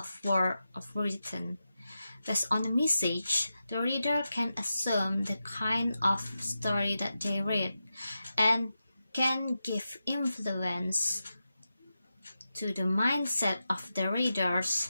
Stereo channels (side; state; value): both; inverted; correlation -0.90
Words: written. Based on the message, the reader can assume the kind of story that they read and can give influence to the mindset of the readers